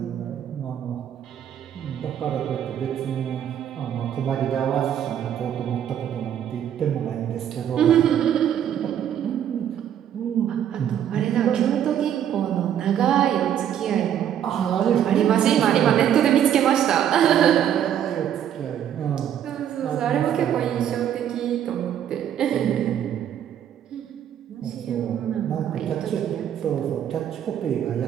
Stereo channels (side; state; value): left; quieter; 9.8 dB